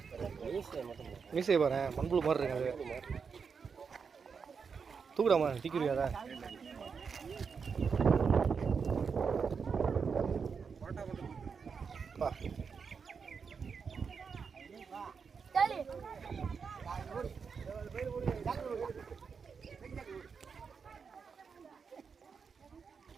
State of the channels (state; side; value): quieter; left; 5.8 dB